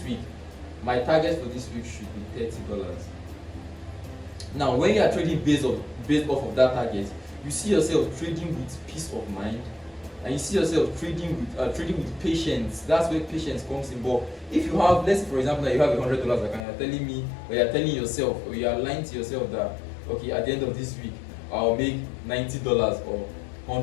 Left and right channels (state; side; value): drops out; right; at 16.7 s